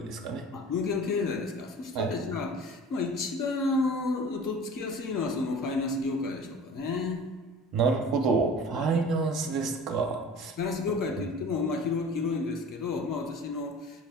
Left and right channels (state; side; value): normal; both; correlation 0.41